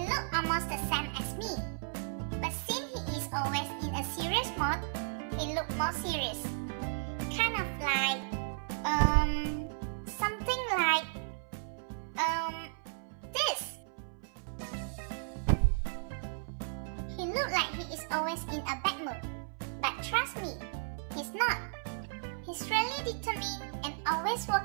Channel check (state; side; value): silent; left; 55 dB below the other